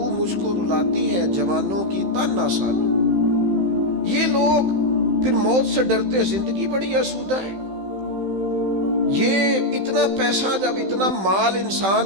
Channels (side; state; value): left; late; 15 ms